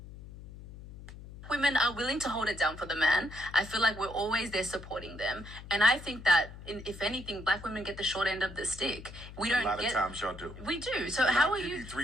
Women are willing to hold it down for the man. I feel like we're always there supporting them, and I think that if anything, black women get the short end of the stick. We don't. A lot of times y'all do. We do. So how are you?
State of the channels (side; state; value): left; noise; hum, 15 dB below the sound